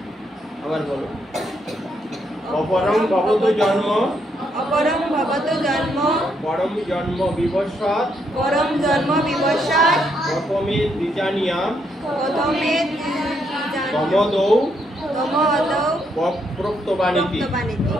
আবার বলো। অপরং ভবতু জন্ম অপরম ভবতু জন্ম পরম জন্ম বিবস্বাদ পরম জন্ম বিবস্বাদ প্রথমে দ্বিজানিয়াম প্রথমে তমদৌ তমদৌ প্রক্তবানীতি।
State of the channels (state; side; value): normal; both; correlation 0.76